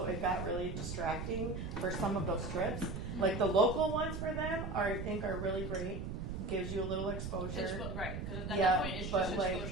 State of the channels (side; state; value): right; noise; rumble, 5 dB below the sound